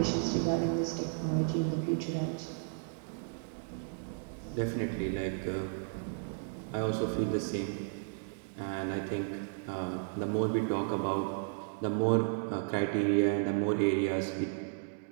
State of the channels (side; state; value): left; silent; digital silence